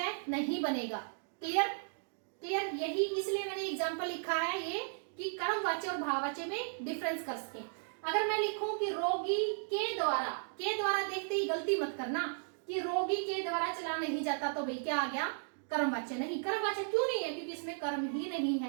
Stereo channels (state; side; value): silent; left; digital silence